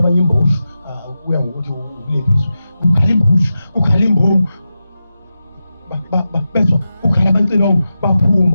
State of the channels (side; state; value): both; inverted; correlation -0.91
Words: imbosho kuya ngokuthi ulephiswe ukhala imbomu bezwa ukhala abancilongo